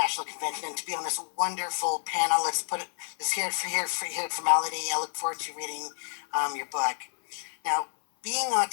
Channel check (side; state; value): right; silent; 59 dB below the other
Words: convention and to be on this wonderful panel. Let's hear it for formality. I look forward to reading your book. Now, being